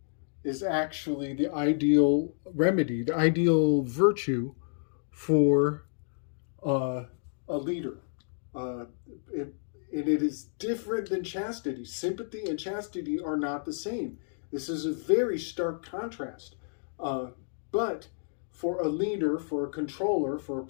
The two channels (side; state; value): right; silent; digital silence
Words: is actually the ideal remedy, the ideal virtue for a leader. It is different than chastity. Sympathy and chastity are not the same. This is a very stark contrast. But for a leader, for a controller, for a